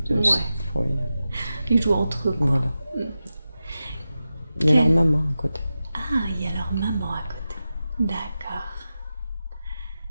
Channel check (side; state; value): both; inverted; correlation -0.92